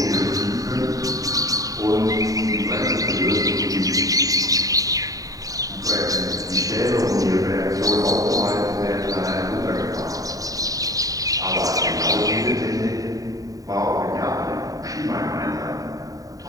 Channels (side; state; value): left; late; 0.17 ms